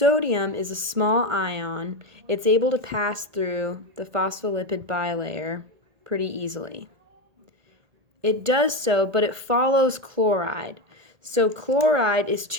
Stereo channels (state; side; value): late; left; 1.8 ms